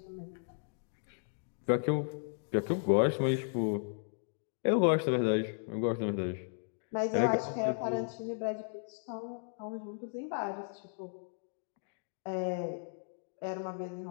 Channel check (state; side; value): silent; right; digital silence